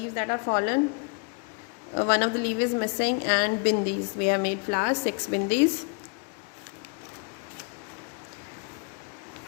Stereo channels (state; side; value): quieter; right; 34.6 dB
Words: that are fallen. One of the leaf is missing, and bindis. We have made flowers, 6 bindis.